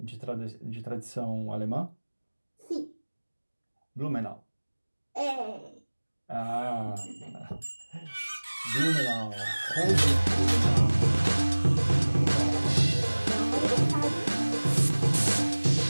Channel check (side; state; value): both; inverted; correlation -1.00